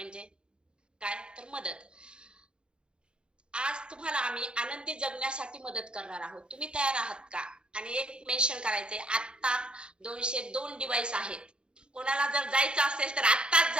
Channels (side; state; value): left; late; 0.052 ms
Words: काय? तर मदत. आज तुम्हाला आम्ही आनंदी जगण्यासाठी मदत करणार आहोत. तुम्ही तयार आहात का? आणि एक मेन्शन करायचंय, आता 202 डिव्हाइस आहेत. कोणाला जर जायचं असेल तर आत्ताच